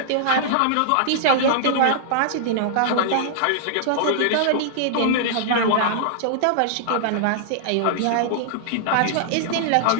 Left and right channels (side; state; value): both; different; correlation -0.01